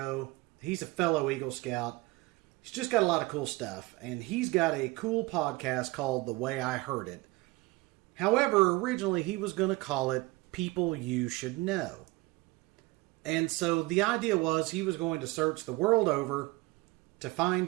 He's a fellow Eagle Scout. He's just got a lot of cool stuff, and he's got a cool podcast called The Way I Heard It. However, originally he was going to call it People You Should Know. And so the idea was he was going to search the world over to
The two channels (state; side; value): quieter; left; 22.1 dB